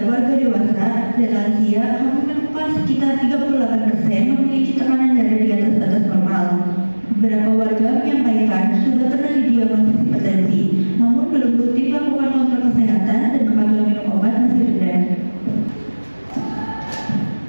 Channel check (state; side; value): inverted; both; correlation -1.00